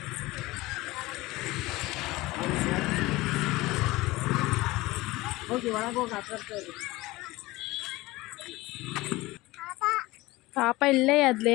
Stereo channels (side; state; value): right; quieter; 20.0 dB